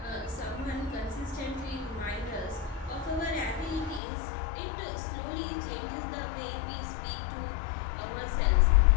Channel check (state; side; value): drops out; right; at 4.0 s